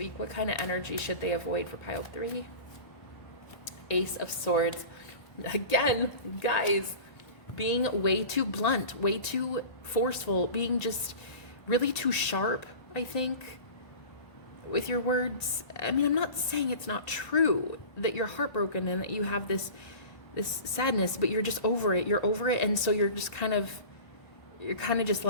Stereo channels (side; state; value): right; late; 1.8 ms